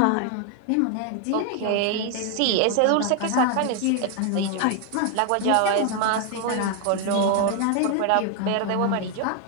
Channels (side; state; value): both; different; correlation 0.01